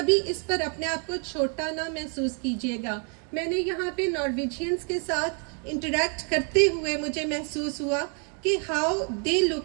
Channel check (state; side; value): quieter; left; 39.7 dB